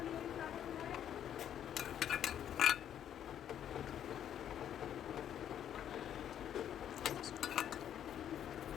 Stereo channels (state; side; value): quieter; right; 10.0 dB